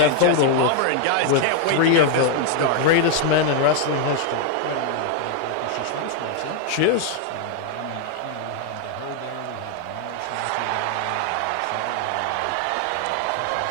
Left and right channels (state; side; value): different; both; correlation 0.00